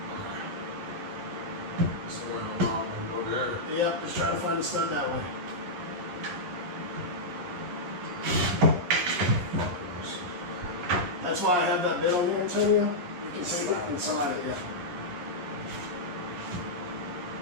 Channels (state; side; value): late; left; 11 ms